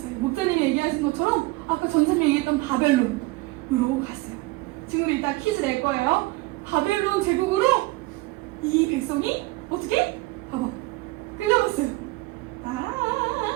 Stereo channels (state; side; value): quieter; left; 21.6 dB